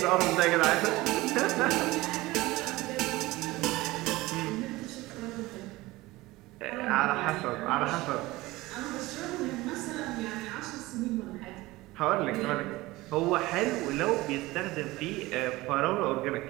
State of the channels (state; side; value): quieter; left; 19.6 dB